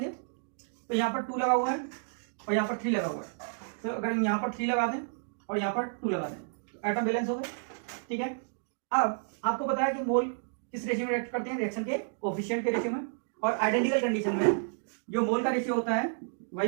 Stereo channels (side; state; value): left; silent; digital silence